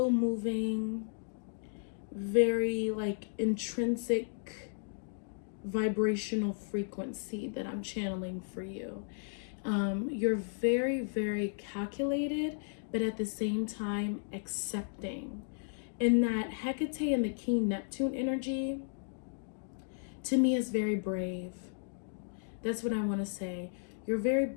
moving, very like intrinsic vibrational frequency that I'm channeling for you. You're very, very calculated, but at the same time accepting. And that Hecate and the King Neptune energy, to me, is very brave. That's what I want to say. You're very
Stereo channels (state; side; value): silent; right; digital silence